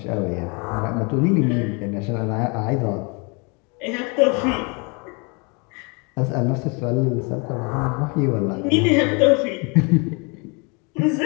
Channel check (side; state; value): right; quieter; 31.7 dB